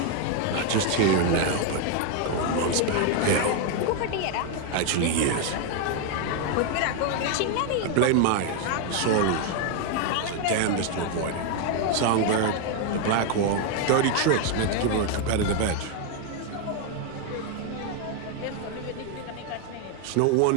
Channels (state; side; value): different; both; correlation 0.01